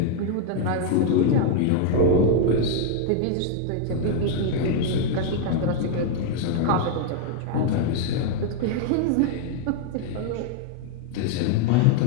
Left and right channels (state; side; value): different; both; correlation 0.00